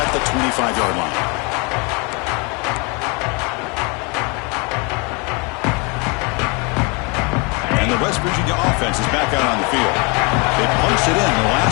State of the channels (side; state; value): right; quieter; 30.8 dB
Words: at the 25-yard line. And the West Virginia offense is back out on the field. They punched it in the